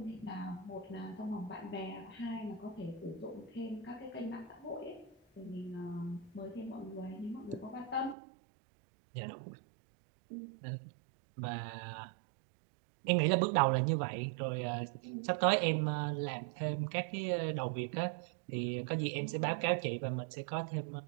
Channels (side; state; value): left; drops out; at 8.2 s